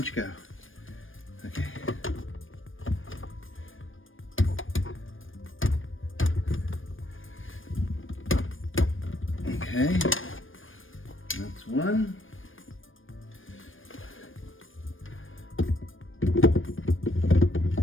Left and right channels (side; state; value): right; late; 0.59 ms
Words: go? Okay. Okay, that's 1.